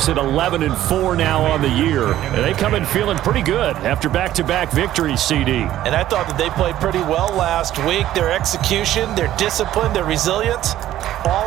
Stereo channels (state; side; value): quieter; left; 13.2 dB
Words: at 11-4 now on the year. And they come in feeling pretty good after back-to-back victories, CD. And I thought that they played pretty well last week. Their execution, their discipline, their resilience, all